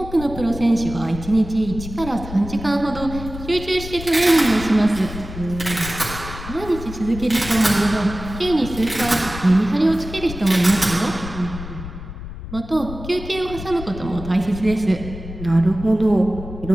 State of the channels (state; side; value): noise; left; rumble, 11 dB below the sound